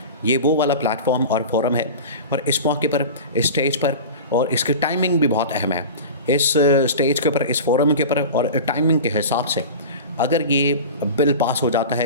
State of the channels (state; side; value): inverted; both; correlation -0.31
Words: ये वो वाला प्लेटफॉर्म और फोरम है। और इस मौके पर, इस स्टेज पर, और इसकी टाइमिंग भी बहुत अहम है। इस स्टेज के ऊपर, इस फोरम के ऊपर और टाइमिंग के हिसाब से अगर ये बिल पास हो जाता